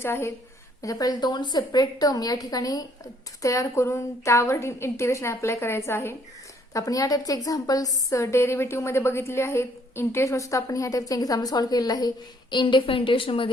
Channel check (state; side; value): normal; both; correlation 0.65